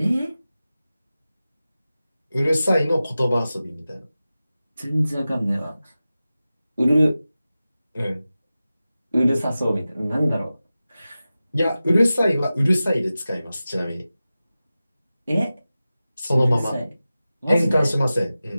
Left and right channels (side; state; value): both; inverted; correlation -0.95